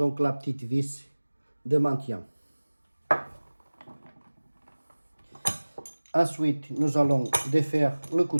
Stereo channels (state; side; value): inverted; both; correlation -1.00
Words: la petite vis de maintien. Ensuite, nous allons défaire le